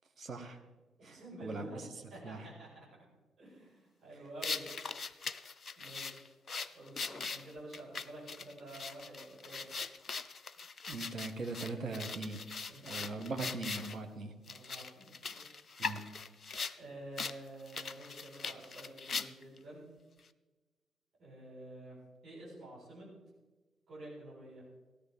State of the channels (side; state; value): both; normal; correlation 0.71